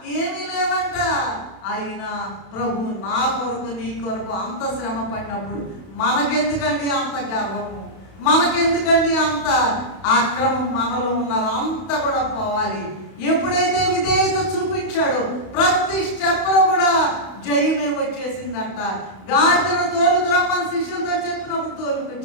ఏమీ లేదంట. అయినా ప్రభు నా కొరకు నీ కొరకు అంత శ్రమ పడినప్పుడు మనకెందుకండి అంత గర్వము, మనకెందుకండి అంత అక్రమం? మనలో ఉన్నది అంతా కూడా పోవాలి. ఎప్పుడైతే విధేయత చూపించాడో ప్రతి స్టెప్లో కూడా జయమే వచ్చేసిందంట. గాడిదను తోలుకురమ్మని శిష్యులతో చెప్పినప్పుడు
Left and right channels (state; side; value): late; right; 32 ms